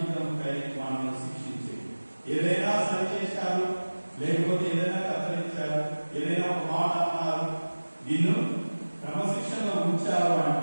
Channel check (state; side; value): inverted; both; correlation -1.00